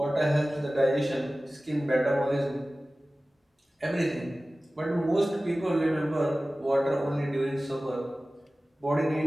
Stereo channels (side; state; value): both; normal; correlation 0.97